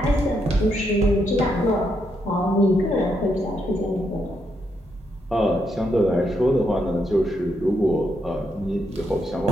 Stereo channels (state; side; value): normal; both; correlation 0.79